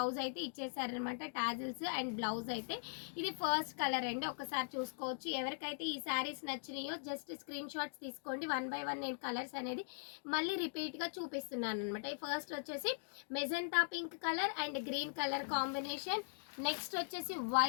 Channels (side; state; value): right; silent; digital silence